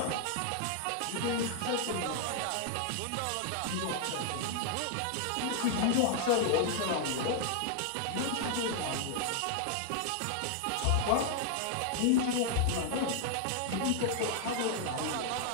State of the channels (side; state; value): both; different; correlation 0.00